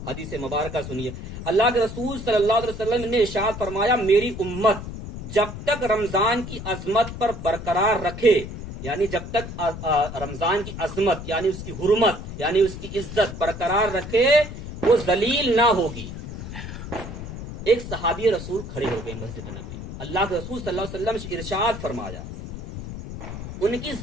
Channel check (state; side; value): noise; left; rumble, 9 dB below the sound